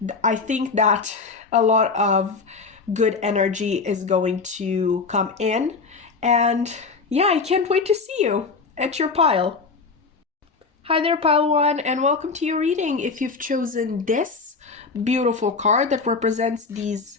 that a lot of good energy is going to come in, and yeah, I can't wait to see you at your pile. Hi there, pile 1, and welcome to your reading. If you've chosen this beautiful card that represents these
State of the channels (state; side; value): quieter; right; 4.5 dB